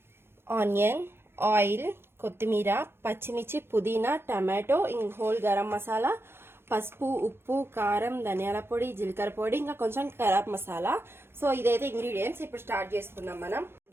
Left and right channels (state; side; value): late; left; 0.12 ms